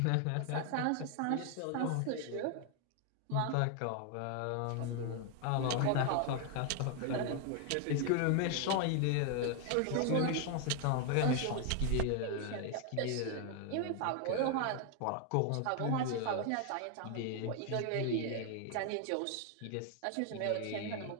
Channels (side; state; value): both; different; correlation 0.00